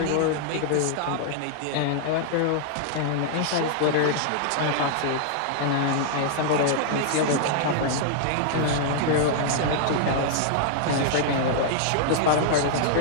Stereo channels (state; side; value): different; both; correlation -0.01